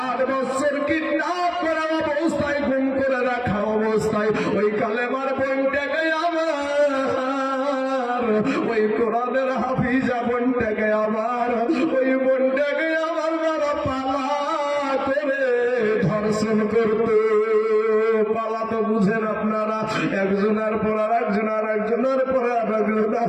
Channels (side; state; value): both; identical; correlation 1.00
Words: 8 বছর কিডন্যাপ করা অবস্থায়, গুম করে রাখা অবস্থায়, ওই কালেমার বোনটাকে আমার, ওই কোরআনের হাফিজা বোনটাকে আমার, ওই বোনটাকে আমার বাবা পালা করে ধর্ষণ করতো। পালা তো বুঝেন আপনারা, একজনের পর আর একজন, আর একজনের পর আর একজন,